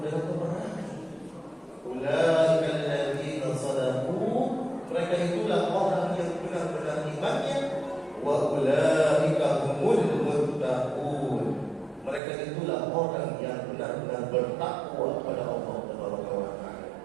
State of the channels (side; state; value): left; drops out; at 12.2 s